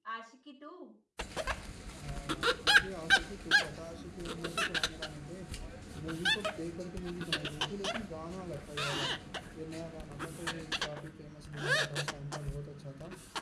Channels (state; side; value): identical; both; correlation 1.00